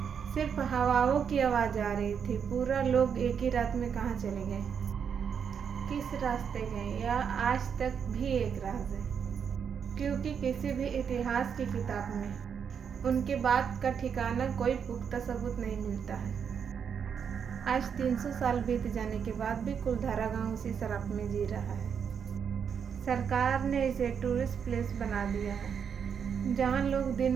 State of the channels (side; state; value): left; quieter; 7.2 dB